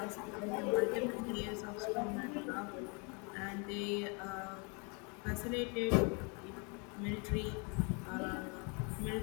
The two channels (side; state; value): right; quieter; 33.5 dB